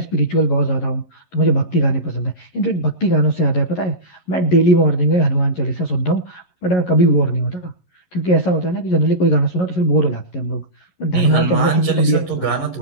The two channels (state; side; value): late; right; 11 ms